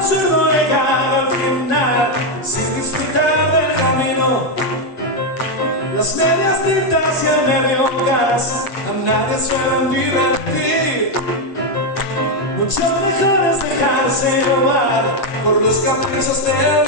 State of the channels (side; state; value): right; late; 7.8 ms